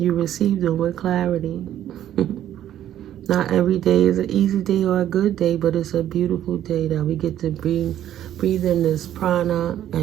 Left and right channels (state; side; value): quieter; left; 11.6 dB